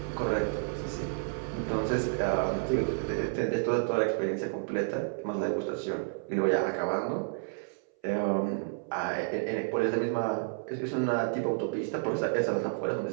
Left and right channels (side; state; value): left; silent; 57 dB below the other